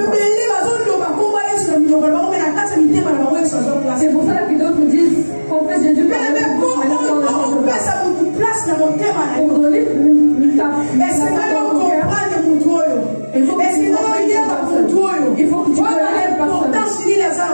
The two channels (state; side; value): inverted; both; correlation -1.00